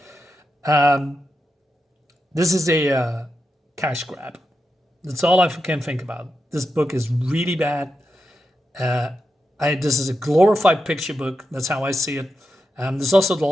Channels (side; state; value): both; normal; correlation 0.88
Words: This is a cash grab. That's all I can think about. This book is really bad. This is a glorified picture book. That's how I see it. This is also the